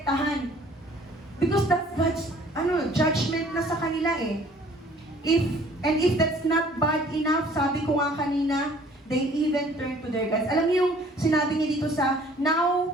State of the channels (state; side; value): normal; both; correlation 0.55